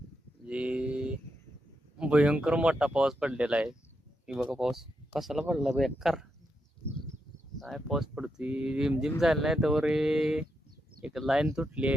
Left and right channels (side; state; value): both; normal; correlation 0.83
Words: जी भयंकर मोठा पाऊस पडलेला आहे. ही बघा पाऊस कसाला पडला बेकार. काय पाऊस पडतोय, रिमझिम झाला नाही तर एक लाईन तुटली